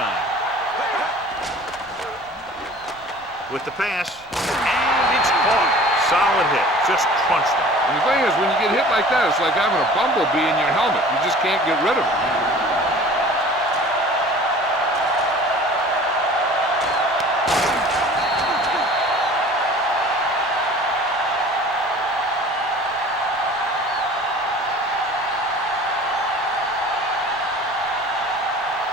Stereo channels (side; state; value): right; noise; rumble, 26 dB below the sound